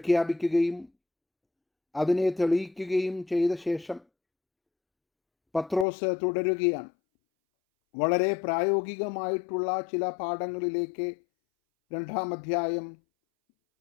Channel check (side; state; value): right; drops out; at 5.9 s